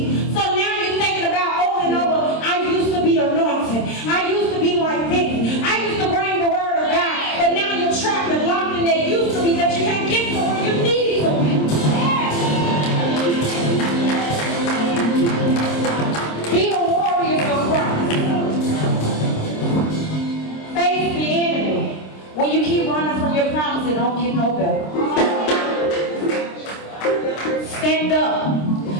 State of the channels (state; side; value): late; right; 26 ms